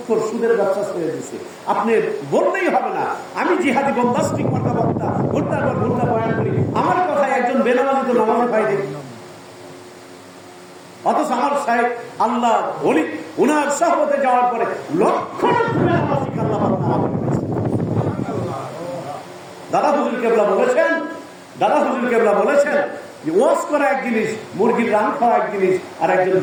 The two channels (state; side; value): identical; both; correlation 1.00